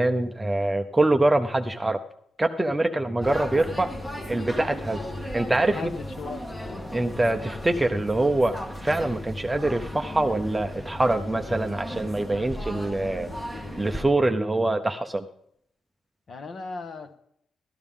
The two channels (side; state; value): both; normal; correlation 0.96